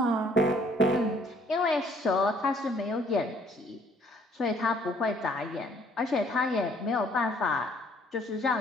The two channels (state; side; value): normal; both; correlation 0.61